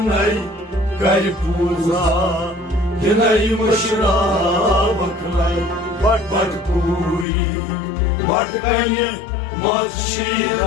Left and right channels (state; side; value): drops out; right; at 7.2 s